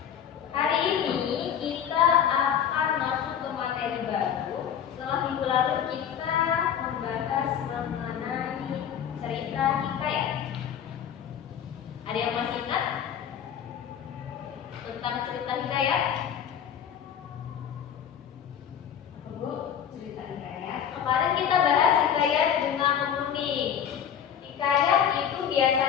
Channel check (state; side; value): quieter; right; 8.7 dB